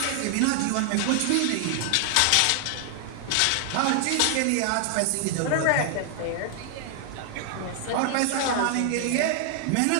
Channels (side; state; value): both; different; correlation 0.00